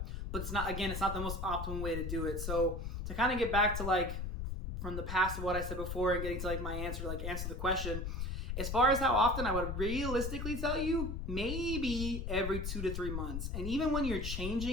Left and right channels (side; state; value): left; noise; rumble, 4 dB below the sound